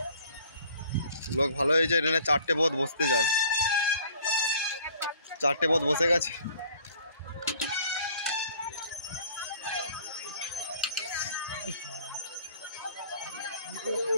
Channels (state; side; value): inverted; both; correlation -0.54